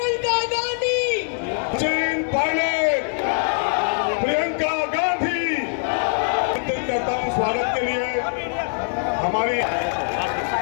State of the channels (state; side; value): silent; right; digital silence